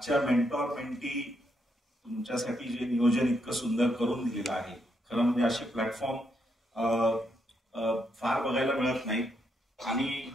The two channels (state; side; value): normal; both; correlation 0.78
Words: मेंटॉर मेंटी तुमच्यासाठी जे नियोजन इतकं सुंदर करून दिलेलं आहे. खरं म्हणजे असे प्लॅटफॉर्म फार बघायला मिळत नाही. आणि